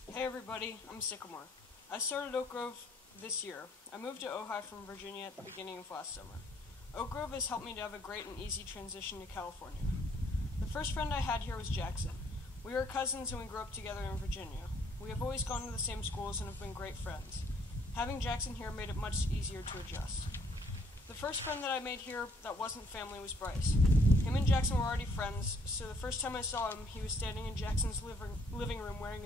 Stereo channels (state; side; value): normal; both; correlation 0.65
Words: Hey everybody, I'm Sycamore. I started Oak Grove this year. I moved to Ojai from Virginia at the beginning of last summer. Oak Grove has helped me to have a great and easy transition to California. The first friend I had here was Jackson. We were cousins and we grew up together in Virginia. We have always gone to the same schools and have been great friends. Having Jackson here made it much easier to adjust. The first friend that I made here that wasn't family was Bryce. Him and Jackson were already friends, so the first time I saw him, he was standing in Jackson's living room wearing